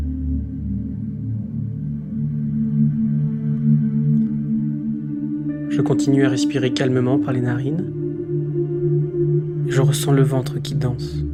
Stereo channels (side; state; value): both; identical; correlation 1.00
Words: Je continue à respirer calmement par les narines et je ressens le ventre qui danse.